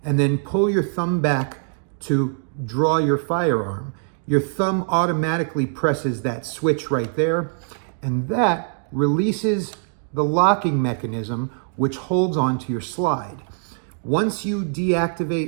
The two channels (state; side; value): silent; left; digital silence